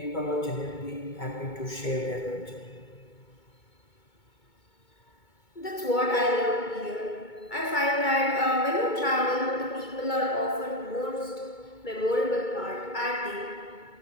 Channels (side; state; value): right; late; 2.2 ms